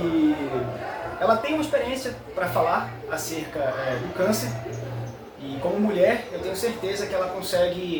ela tem uma experiência para falar acerca do câncer. E como mulher, eu tenho certeza que ela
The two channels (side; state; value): both; identical; correlation 1.00